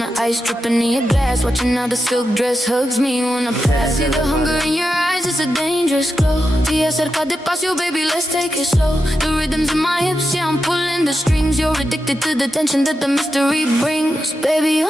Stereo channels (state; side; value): normal; both; correlation 0.88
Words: ice dripping in your glass, watching how the silk dress hugs me when I pass. See the hunger in your eyes, it's a dangerous glow. Te acerca despacio, baby, let's take it slow. The rhythms in my hips, yeah, I'm pulling the strings. You're addicted to the tension that the mystery brings. Baby, you're